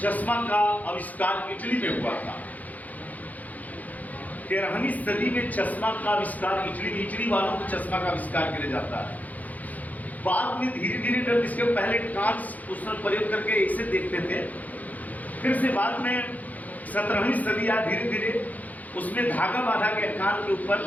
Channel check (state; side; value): late; right; 0.079 ms